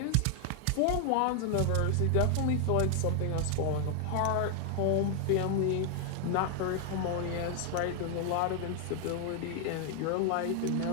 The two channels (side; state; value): both; different; correlation 0.00